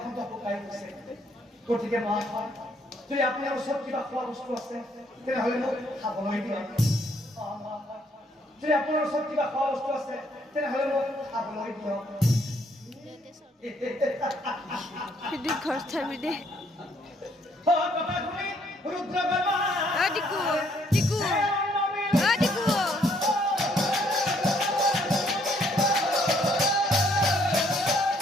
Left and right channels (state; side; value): normal; both; correlation 0.67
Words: শুকাই গৈছে গতিকে মহাশয় যদি আপোনাৰ ওচৰত কিবা খোৱা বস্তু আছে তেনেহ'লে মোক খাবলৈ দিয়ক যদি আপোনাৰ ওচৰত কিবা খোৱা বস্তু আছে তেনেহ'লে মোক খাবলৈ দিয়ক Hindi korta bile. Hadi ku, diku, hadi ku.